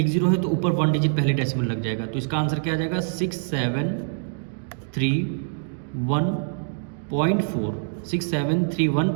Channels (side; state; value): left; silent; digital silence